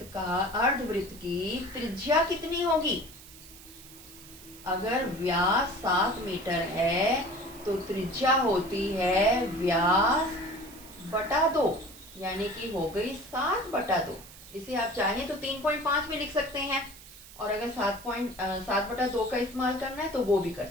की त्रिज्या कितनी होगी, अगर व्यास 7 मीटर है तो त्रिज्या होती है व्यास बटा 2, यानी कि हो गई 7 बटा 2। इसे आप चाहें तो 3.5 में लिख सकते हैं, और अगर 7 बटा 2 का इस्तेमाल करना है तो वो भी कर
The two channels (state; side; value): noise; right; hiss, 18 dB below the sound